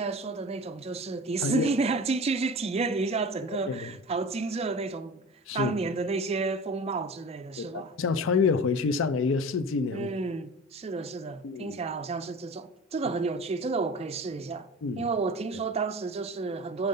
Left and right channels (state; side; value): normal; both; correlation 0.35